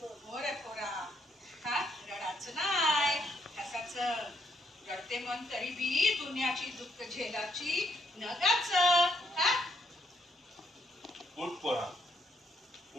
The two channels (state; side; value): normal; both; correlation 0.73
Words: मोरे पोरा. हा रडाचं नाही हसाचं. रडते मन तरी बी दुनियाची दुःख झेलाची नगाच. हा उठ पोरा